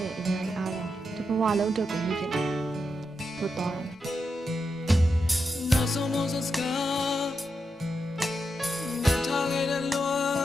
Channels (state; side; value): normal; both; correlation 0.86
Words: ဲ့အရာတွေအားလုံးဒီဘဝလုံးအတွက်ကိုမြင်ဖြစ်တယ်ဆိုတော့ နောက်ဆုံးစကားမထားခဲ့တဲ့လွန